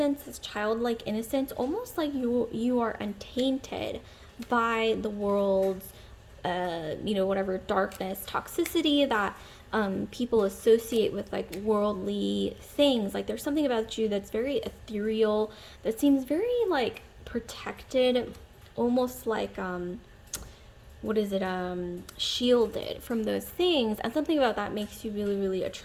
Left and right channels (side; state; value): both; identical; correlation 1.00